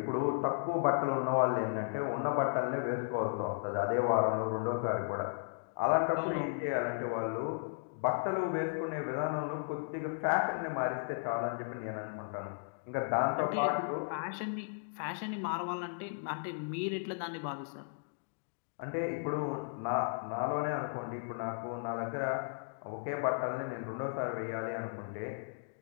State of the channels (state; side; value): silent; right; digital silence